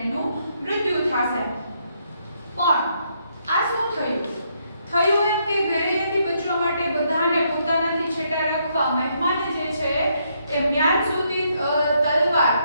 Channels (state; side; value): inverted; both; correlation -0.74